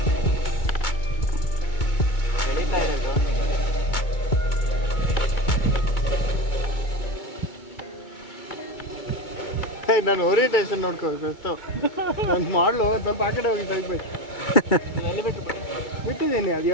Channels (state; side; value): late; right; 2.2 ms